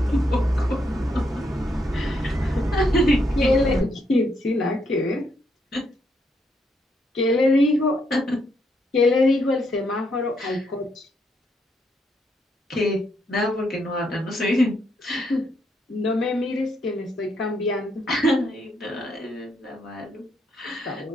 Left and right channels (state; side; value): normal; both; correlation 0.76